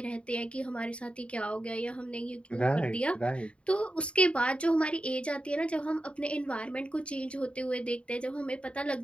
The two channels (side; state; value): right; late; 0.059 ms